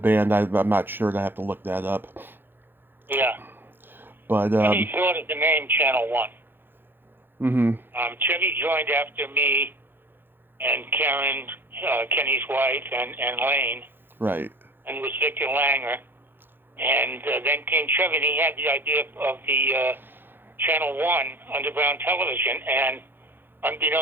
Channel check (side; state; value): left; late; 0.099 ms